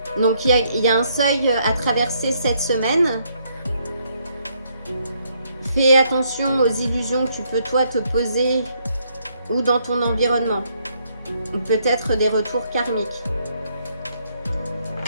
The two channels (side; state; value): both; inverted; correlation -0.72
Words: Donc il y a un seuil à traverser cette semaine. Fais attention aux illusions que tu peux toi te poser ou dans ton environnement. Ou peut-être des retours karmiques.